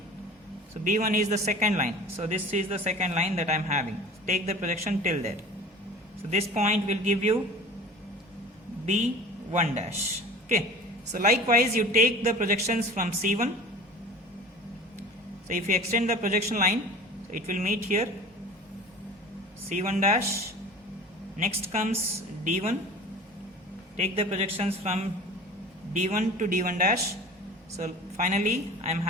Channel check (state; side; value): normal; both; correlation 0.40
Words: So B1 is the second line. So this is the second line that I am having. Take the projection till there. So this point will give you B1 dash. Okay. So likewise you take the projections from C1. So if you extend the projection line, so it will meet here C1 dash. Next comes D1. Take the projections from D1 to D1 dash. So finally I am